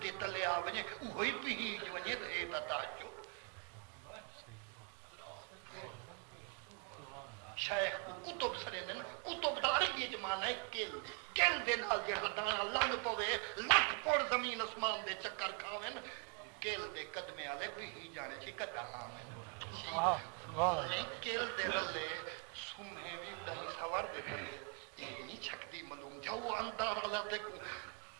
دے تلے آوے وہی پیج ونجے دے تاجو شیخ کو کتب سرے دن کتب داری یہ جمانا ہے کل دے نال جہاں دانا لنگ پوے لکھ پوڑ زمین اسمان دے چکر کھاویں کل دے قدمے آلے کوئی ہی جانے چی کتا آمیں کل دے رلے سمہیں بھی دہی سوار دے تلے یہ نہیں چھکتی ملوم جو اندار اللہ تے کو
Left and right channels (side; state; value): left; quieter; 37.7 dB